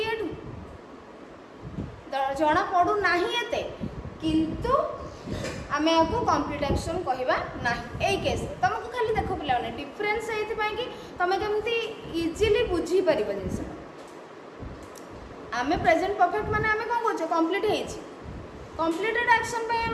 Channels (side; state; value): both; identical; correlation 1.00